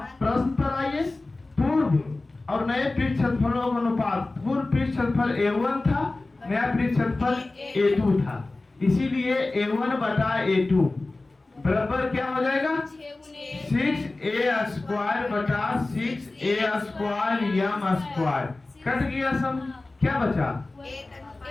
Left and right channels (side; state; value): right; quieter; 3.1 dB